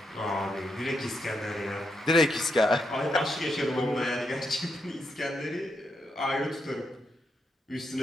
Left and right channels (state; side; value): normal; both; correlation 0.81